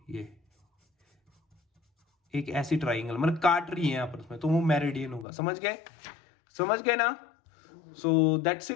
एक ऐसी ट्राइंगल मतलब काट रही है यहां पर, तो वो मेरिडियन होगा, समझ गए, समझ गए ना। So that's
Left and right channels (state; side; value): drops out; right; at 5.2 s